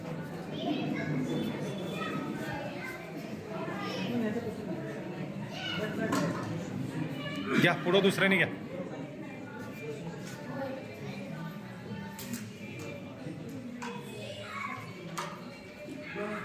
घ्या पुढं दुसऱ्याने घ्या.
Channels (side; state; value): both; identical; correlation 1.00